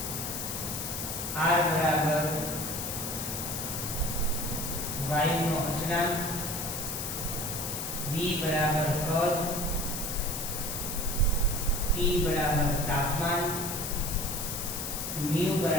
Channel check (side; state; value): left; noise; hiss, 4 dB below the sound